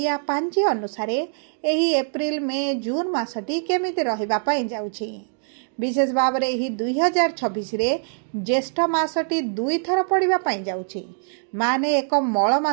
पांजी अनुसारे एही एप्रिल मे जून मासटी केमिति रहिबा पाई जाउछि। विशेष भाव रे एही 2026 रे ज्येष्ठ मासटी 2 थर पड़िबा पाई जाउछि, माने एक मळ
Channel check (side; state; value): left; silent; digital silence